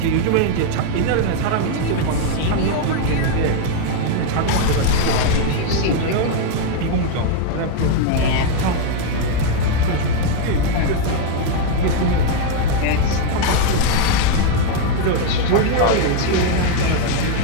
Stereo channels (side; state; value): both; different; correlation 0.00